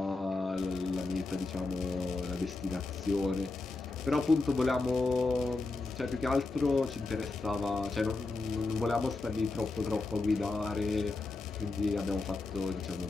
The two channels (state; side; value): quieter; right; 3.4 dB